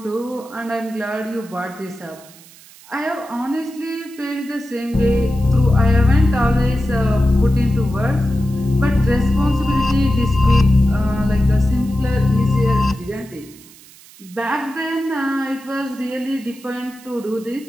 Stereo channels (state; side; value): noise; right; hiss, 23 dB below the sound